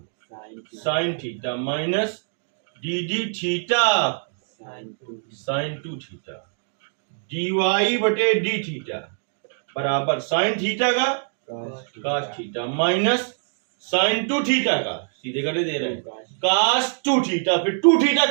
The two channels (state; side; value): silent; left; digital silence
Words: sine theta minus D D theta sine 2 theta. dy बटे डी थीटा बराबर साइन थीटा का cos theta minus sine 2 theta का, सीधे करके दे रहे हैं, कास 2 थीटा, फिर 2 थीटा